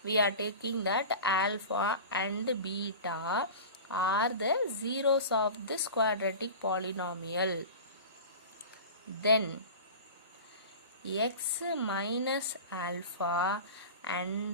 we are taking that alpha and beta are the zeros of this quadratic polynomial. Then x minus alpha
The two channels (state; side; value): inverted; both; correlation -0.33